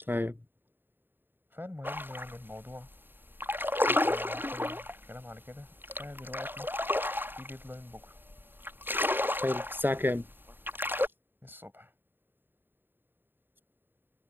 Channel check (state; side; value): late; left; 0.097 ms